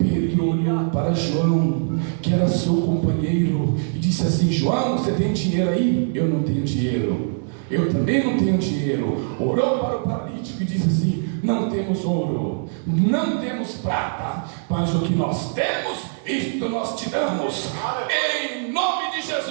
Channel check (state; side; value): silent; left; digital silence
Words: olhou para João, que era seu companheiro, e disse assim: João, você tem dinheiro aí? Eu não tenho dinheiro. Eu também não tenho dinheiro. Orou para o paralítico e disse assim: não temos ouro, não temos prata, mas o que nós temos, isto nós te damos. Em nome de